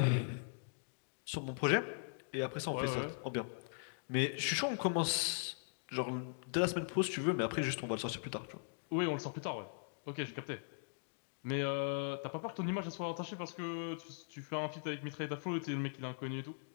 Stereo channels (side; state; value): right; silent; digital silence